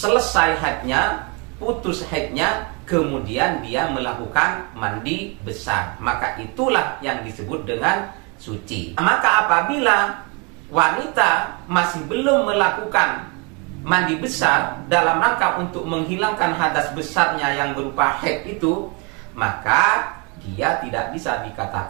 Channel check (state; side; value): quieter; left; 31.5 dB